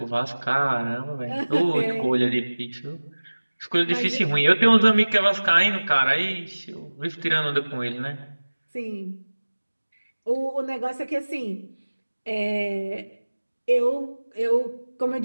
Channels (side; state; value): both; inverted; correlation -1.00